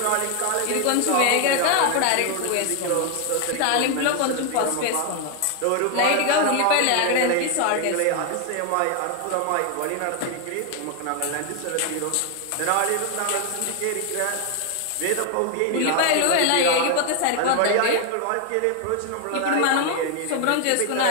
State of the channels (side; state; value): both; different; correlation 0.01